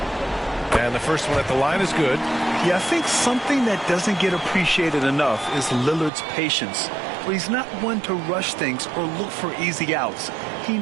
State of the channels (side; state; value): left; drops out; at 6.1 s